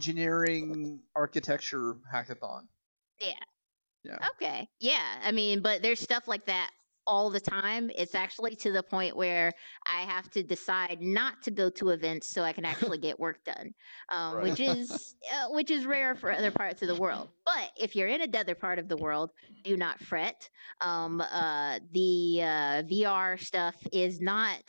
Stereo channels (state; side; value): inverted; both; correlation -1.00